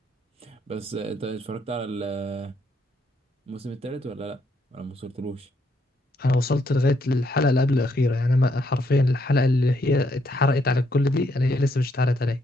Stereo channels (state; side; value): normal; both; correlation 0.74